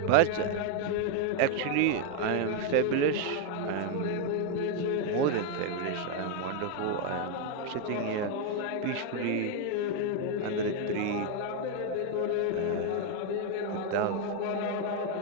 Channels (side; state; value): both; different; correlation 0.01